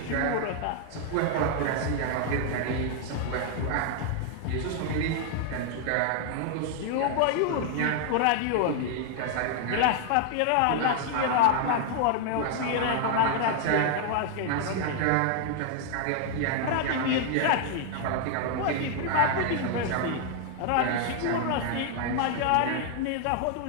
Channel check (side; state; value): both; different; correlation 0.00